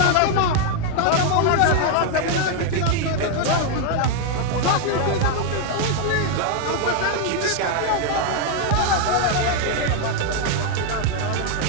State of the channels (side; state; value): both; different; correlation 0.01